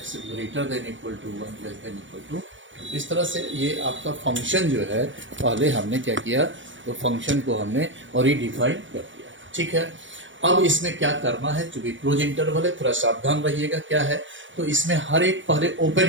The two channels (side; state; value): left; late; 0.56 ms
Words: greater than equal to 1 less than equal to. इस तरह से ये आपका फंक्शन जो है पहले हमने क्या किया तो फंक्शन को हमने रिडिफाइन कर दिया, ठीक है। अब इसमें क्या करना है, चूंकि क्लोज इंटरवल है थोड़ा सावधान रहिएगा क्या है। तो इसमें हर एक पहले ओपन